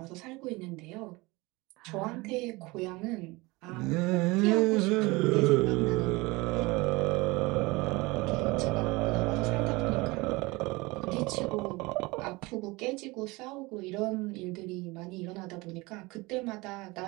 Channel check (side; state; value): left; quieter; 23.3 dB